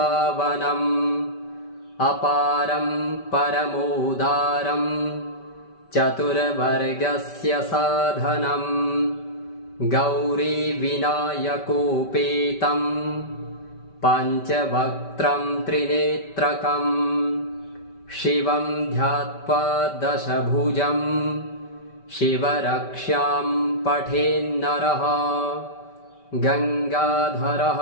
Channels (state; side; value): late; right; 5.1 ms